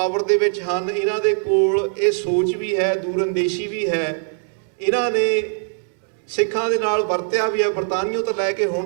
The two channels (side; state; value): left; silent; 64 dB below the other